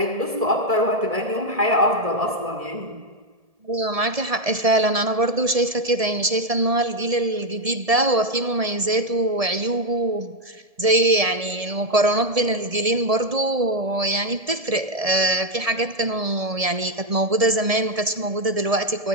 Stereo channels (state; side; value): late; left; 1.7 ms